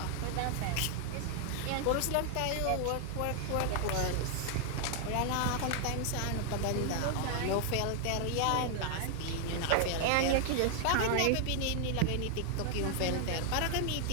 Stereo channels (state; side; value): different; both; correlation 0.00